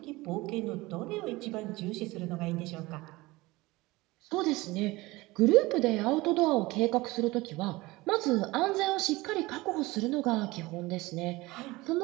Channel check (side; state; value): left; quieter; 20.9 dB